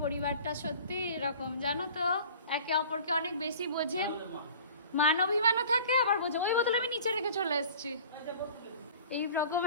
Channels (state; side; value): inverted; both; correlation -0.45